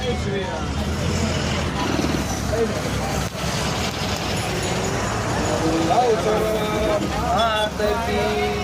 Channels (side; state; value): both; identical; correlation 1.00